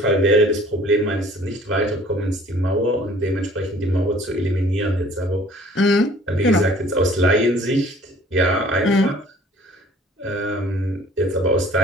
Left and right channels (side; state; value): both; normal; correlation 0.53